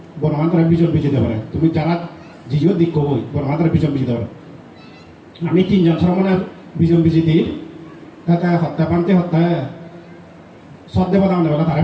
বনবান্ধরা বিজন বিজি দেবে তুমি যারা জিও দিক কবই বনবান্ধরা বিজন বিজি দেবে আমি ৩ জন শ্রমণের বিজন বিজি দিই তাতে হত্যা পান্তে হত্যা সদ্দেব দাম দেবে তারা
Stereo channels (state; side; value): identical; both; correlation 1.00